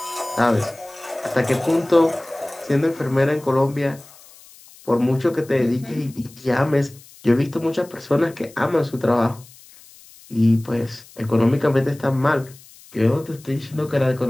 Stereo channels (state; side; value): noise; left; hiss, 23 dB below the sound